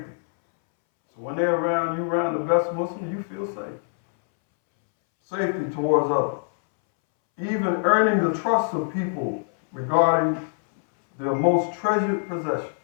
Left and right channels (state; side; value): silent; right; 63 dB below the other